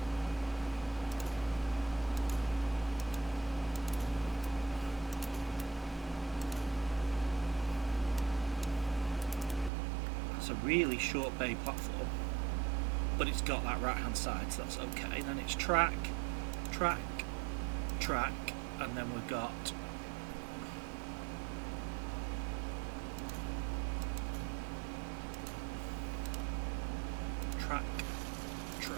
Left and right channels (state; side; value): drops out; left; at 9.7 s